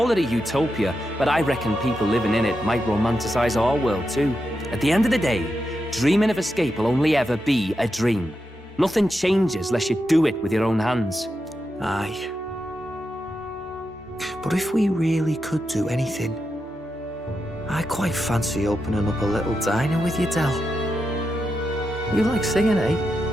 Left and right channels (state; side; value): normal; both; correlation 0.87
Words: it a utopia, but I reckon people living in it might romanticize our world too. At the end of the day, dreaming of escape will only ever be a dream. Nothing changes unless you do it with your own hands. Aye. But if we really could do anything, I quite fancy opening up a little diner with you, Del. You like singing, eh?